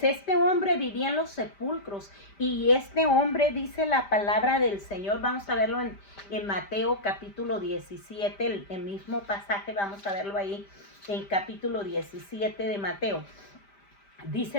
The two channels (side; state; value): right; late; 5.1 ms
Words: este hombre vivía en los sepulcros, y este hombre, dice la palabra del Señor, vamos a verlo en Mateo capítulo 17, el mismo pasaje, vamos a verlo ahí en capítulo 17 de Mateo.